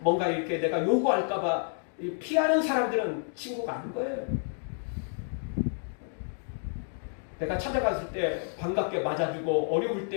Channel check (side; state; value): right; silent; 58 dB below the other